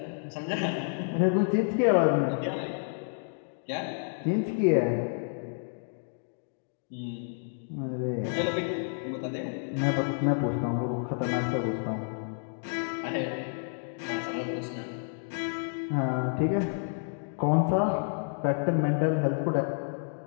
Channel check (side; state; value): right; silent; digital silence